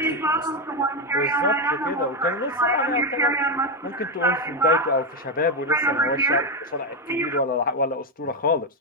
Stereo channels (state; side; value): normal; both; correlation 0.08